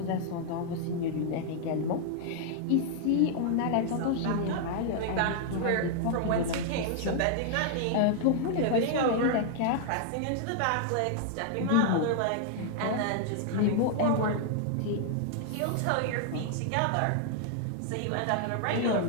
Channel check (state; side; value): different; both; correlation 0.00